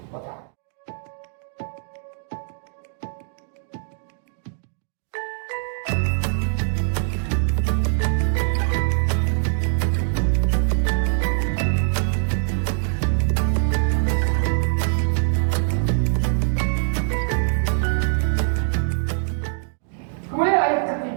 wa Ta'ala. Kemudian ayat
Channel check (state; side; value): silent; left; 63 dB below the other